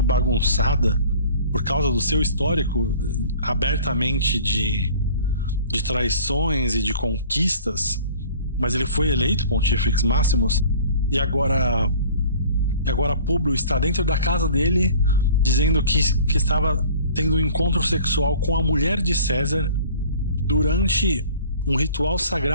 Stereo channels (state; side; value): inverted; both; correlation -0.49